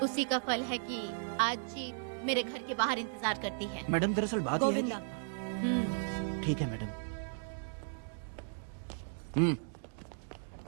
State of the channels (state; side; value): silent; left; digital silence